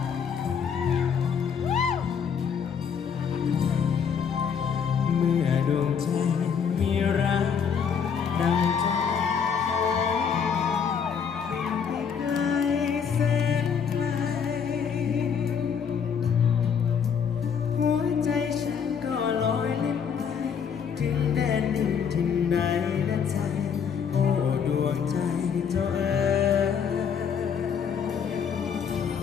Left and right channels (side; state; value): right; quieter; 7.0 dB